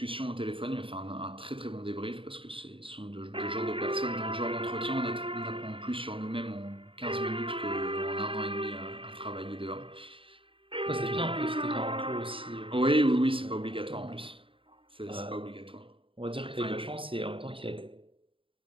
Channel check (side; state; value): left; late; 0.25 ms